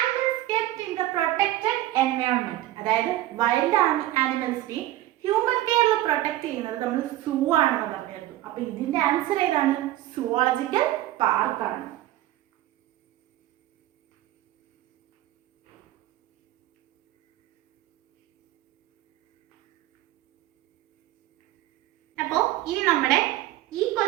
kept in the protected environment. അതായത് വൈൽഡ് ആനിമൽസിനെ ഹ്യൂമൻ കെയറിൽ പ്രൊട്ടക്ട് ചെയ്യുന്നത് നമ്മൾ സൂ ആണെന്ന് പറഞ്ഞിരുന്നു. അപ്പൊ ഇതിന്റെ ആൻസർ ഏതാണ്? സുവോളജിക്കൽ പാർക്കാണ്. അപ്പോ ഇനി നമ്മുടെ ഈ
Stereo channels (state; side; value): quieter; left; 14.9 dB